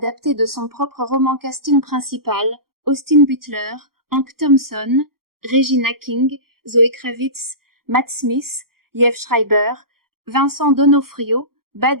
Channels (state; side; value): late; left; 0.93 ms